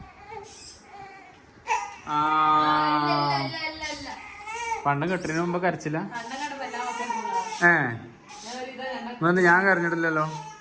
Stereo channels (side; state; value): both; identical; correlation 1.00